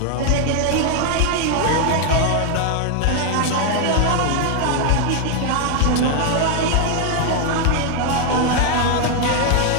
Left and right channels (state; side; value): different; both; correlation 0.00